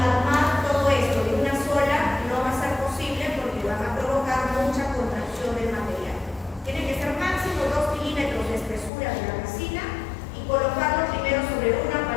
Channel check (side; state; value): right; drops out; at 8.9 s